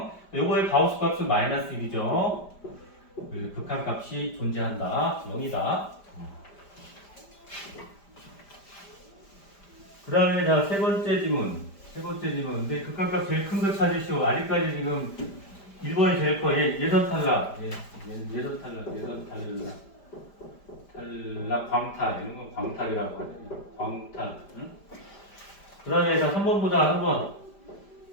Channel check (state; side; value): late; right; 5.0 ms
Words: 요거의 가우스 값은 마이너스 1이죠. 극한값이 존재한다. 0이다. 그 다음에 자, 세 번째 지문. 근데 극한값 제일 큰 거 찾으시오. 아직까지 지금 1번이 제일 커. 예선 탈락. 예선 탈락, 광탈. 이런 거 광탈이라고 하잖아요. 광탈. 응? 그 다음에 자, 3번 보자.